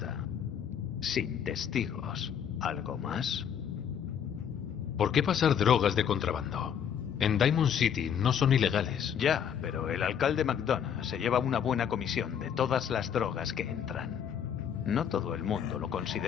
Sin testigos. ¿Algo más? ¿Por qué pasar drogas de contrabando? En Diamond City no son ilegales. Ya, pero el alcalde McDonough se lleva una buena comisión de todas las drogas que entran. No todo el mundo lo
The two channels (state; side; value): quieter; right; 8.4 dB